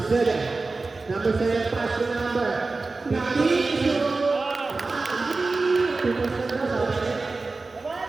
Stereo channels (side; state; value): left; quieter; 3.7 dB